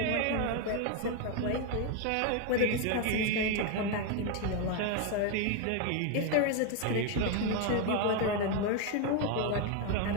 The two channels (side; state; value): both; different; correlation 0.01